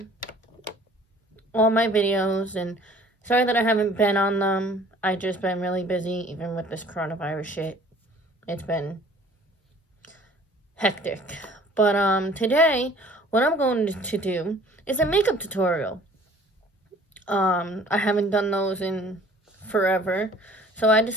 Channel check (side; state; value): both; normal; correlation 0.52